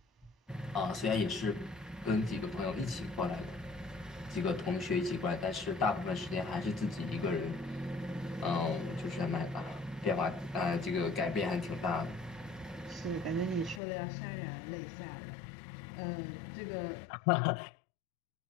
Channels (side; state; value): right; drops out; at 13.8 s